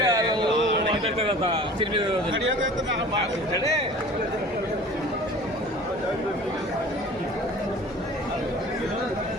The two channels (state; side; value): normal; both; correlation 0.43